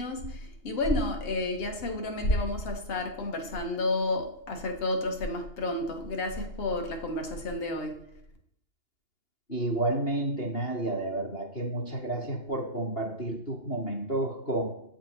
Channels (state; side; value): late; right; 2.8 ms